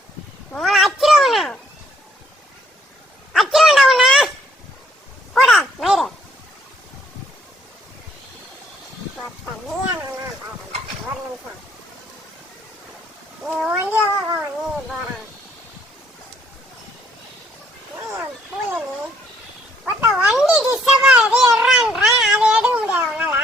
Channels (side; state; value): both; normal; correlation 0.66